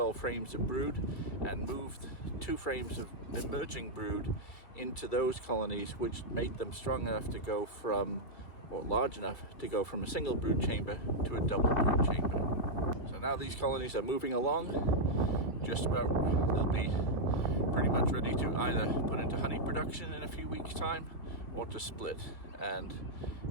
frames of brood, and moved 2 frames of emerging brood into those colonies which made them strong enough to go from, or large enough to go from a single brood chamber to a double brood chamber. So now these colonies are moving along, just about, they'll be pretty much ready to either put into honey production in a few weeks time or to split. And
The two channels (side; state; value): right; late; 2.6 ms